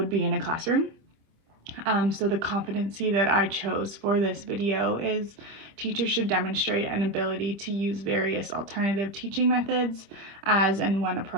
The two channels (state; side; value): late; left; 25 ms